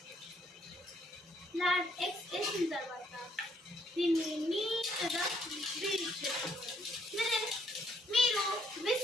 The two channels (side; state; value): both; normal; correlation 0.69